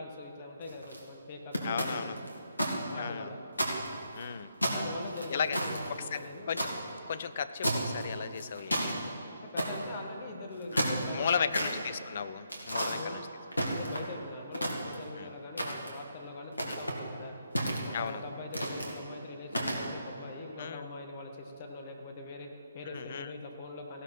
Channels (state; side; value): inverted; both; correlation -0.78